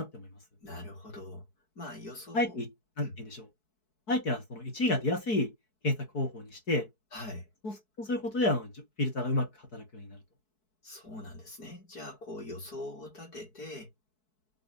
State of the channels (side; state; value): right; late; 4.6 ms